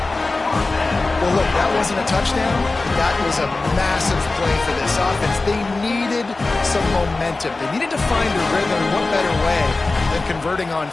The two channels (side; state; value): right; quieter; 3.4 dB